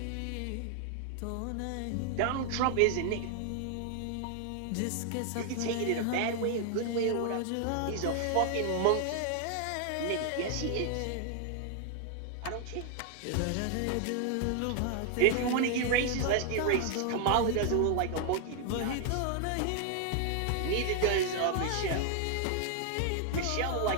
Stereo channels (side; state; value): both; different; correlation 0.00